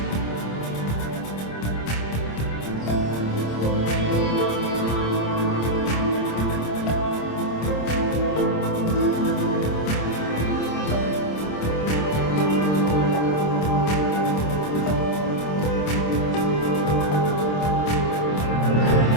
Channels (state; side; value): late; right; 26 ms